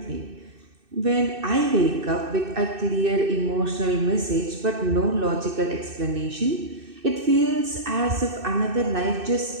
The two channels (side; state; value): left; late; 2.6 ms